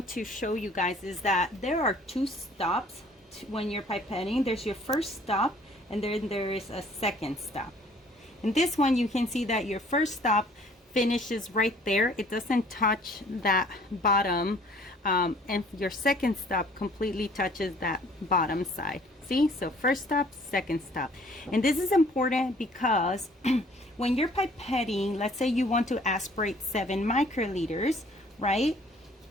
to show you guys is that there are 2 stops when you're pipetting. There's your first stop, and then there is a second stop. In this one, you can see that your first stop finishes right there. It doesn't touch that bottom, and your second stop completely touches that bottom side. See, so first stop, second stop. And this is important because when you're pipetting, let's say you want to aspirate 7 microliters, right?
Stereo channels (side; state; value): both; normal; correlation 0.56